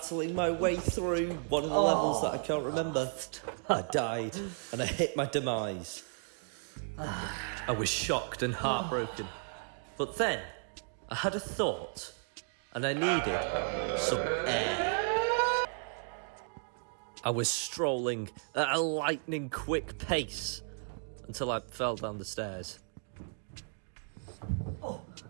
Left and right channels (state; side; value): silent; left; 55 dB below the other